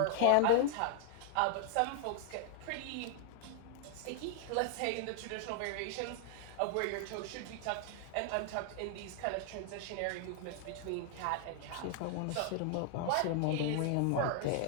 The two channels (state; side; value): different; both; correlation 0.00